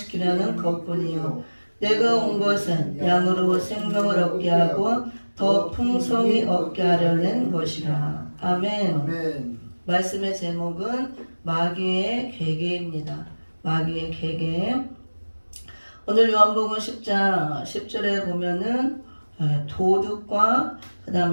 것뿐이요 내가 온 것은 양으로 생명을 얻게 하고 더 풍성히 얻게 하려는 것이라. 아멘. 아멘. 말씀의 제목은 마귀의 괴계입니다. 마귀의 괴계. 오늘 요한복음 10장 10절에 보면은 도둑과 그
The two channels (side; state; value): both; inverted; correlation -1.00